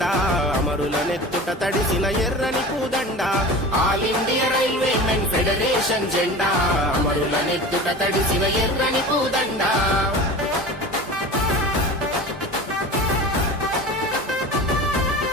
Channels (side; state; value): both; normal; correlation 0.34